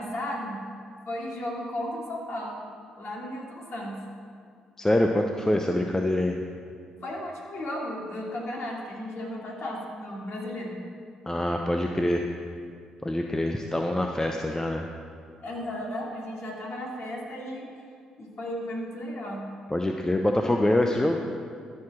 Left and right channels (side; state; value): both; normal; correlation 0.89